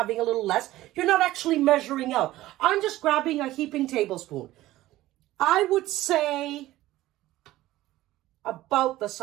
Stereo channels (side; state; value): left; quieter; 16.0 dB